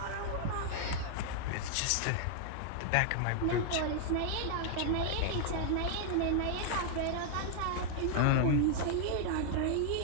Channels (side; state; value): both; different; correlation 0.00